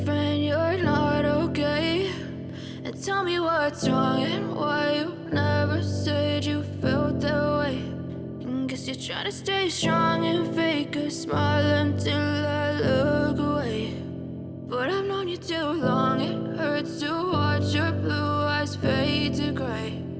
you're not okay, and tell me what's wrong and why you never said you felt that way. And guess you're trying to stay strong and fake a smile until I look away. But I've known you too long, it hurts to watch your blue eyes fade to gray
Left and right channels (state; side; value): identical; both; correlation 1.00